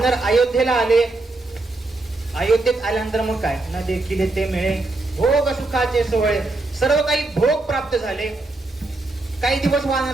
अयोध्येला आले. अयोध्येत आल्यानंतर मग काय, न देखील ते मिळे भोग सुखाचे सोहळे, सर्व काही भोग प्राप्त झाले. काही दिवस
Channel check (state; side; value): quieter; left; 3.1 dB